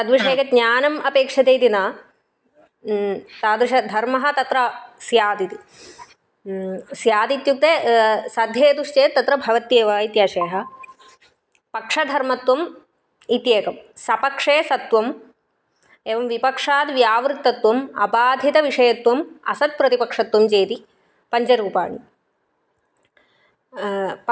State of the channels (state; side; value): identical; both; correlation 1.00